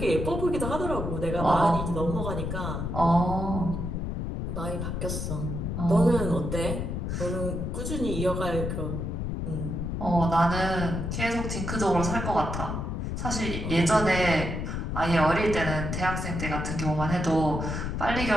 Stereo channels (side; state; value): left; noise; rumble, 3 dB below the sound